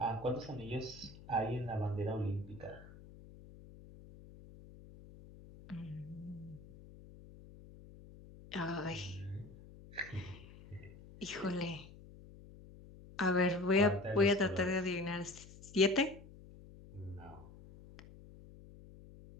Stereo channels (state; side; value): noise; left; hum, 18 dB below the sound